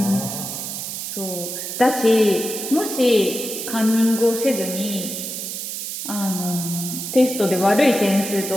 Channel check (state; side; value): noise; right; hiss, 6 dB below the sound